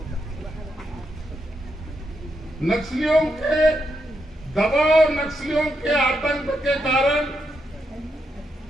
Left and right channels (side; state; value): both; normal; correlation 0.82